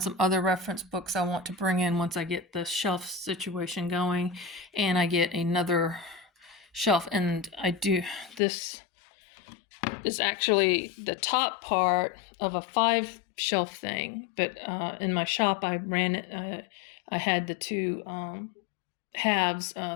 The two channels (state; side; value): drops out; right; at 8.4 s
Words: some other reference books I want to bring in once I get the shelf situation going, and I get another shelf. And this is actually the top part of a 5-shelf thing, but in my shop I ran it. I had the 2 halves